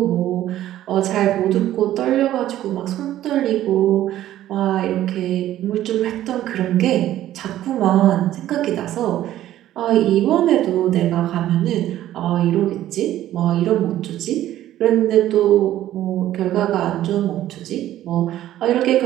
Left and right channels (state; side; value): quieter; left; 13.2 dB